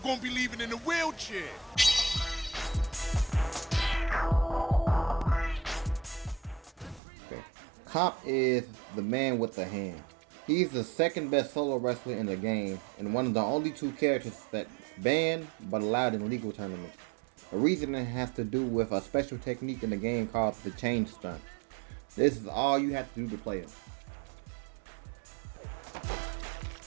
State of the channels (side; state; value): left; drops out; at 7.0 s